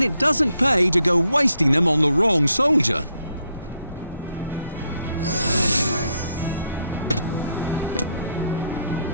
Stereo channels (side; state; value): both; inverted; correlation -0.76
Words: it doesn't pay to go wasting them on the wrong soldier.